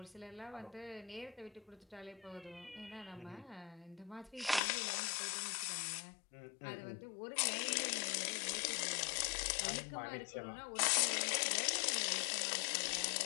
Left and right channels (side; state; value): right; drops out; at 4.6 s